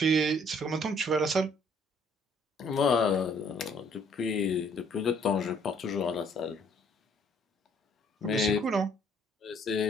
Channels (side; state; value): both; normal; correlation 0.62